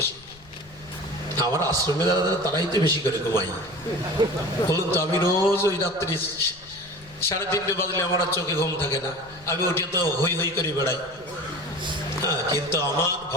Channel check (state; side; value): noise; left; rumble, 24 dB below the sound